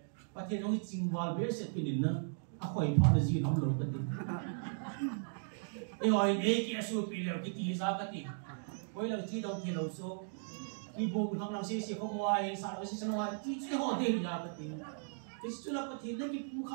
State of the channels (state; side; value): silent; left; digital silence